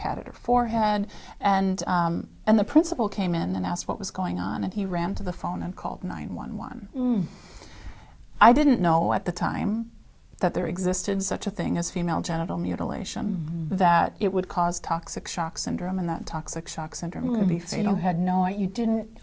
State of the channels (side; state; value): both; identical; correlation 1.00